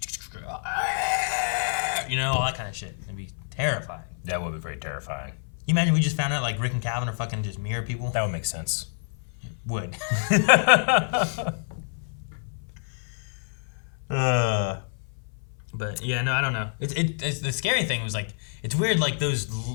all that kind of shit. It'd be terrifying. That would be very terrifying. You imagine we just found out like Rick and Calvin are fucking just mirror people? That would make sense. Would. But yeah, no, I don't know. It's the scary thing was like it's weird. Like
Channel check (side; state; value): right; silent; 56 dB below the other